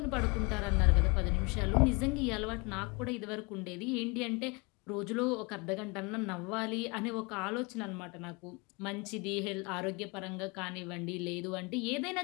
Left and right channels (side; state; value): right; quieter; 29.1 dB